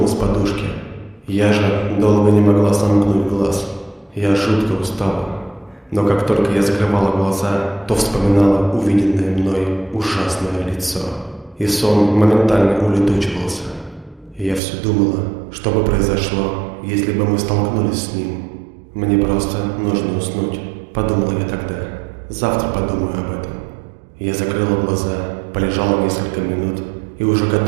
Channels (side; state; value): left; drops out; at 14.6 s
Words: подушки. Я же долго не могла сомкнуть глаз. Я жутко устала. Но как только я закрывала глаза, то вспоминала увиденное мной ужасное лицо. И сон моментально улетучивался. Я все думала, что бы произошло, если бы мы столкнулись с ним. Мне просто нужно уснуть, подумала я тогда. Завтра подумаю об этом. Я закрыла глаза, полежала несколько минут и уже